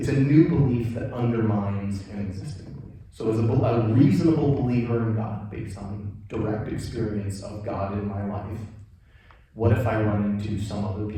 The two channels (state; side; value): identical; both; correlation 1.00